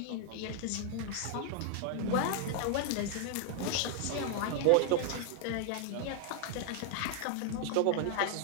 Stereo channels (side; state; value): both; different; correlation 0.00